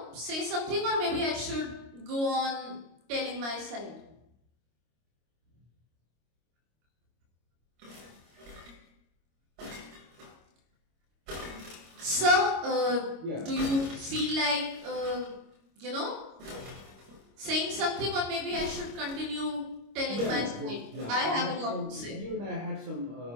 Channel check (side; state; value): left; late; 25 ms